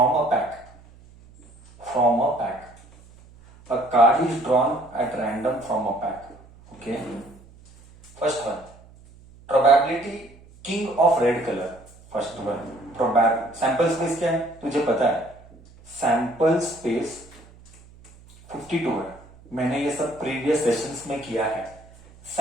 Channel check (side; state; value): right; noise; hum, 24 dB below the sound